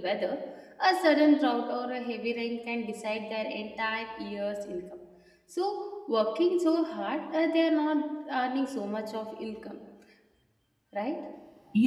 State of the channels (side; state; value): both; identical; correlation 1.00